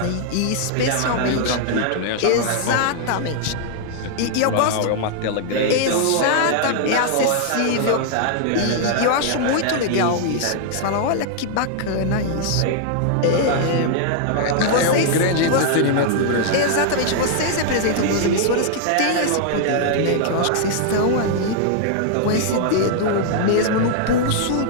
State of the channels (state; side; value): different; both; correlation -0.01